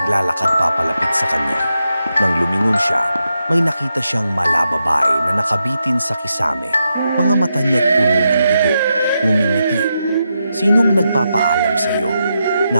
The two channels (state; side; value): inverted; both; correlation -0.85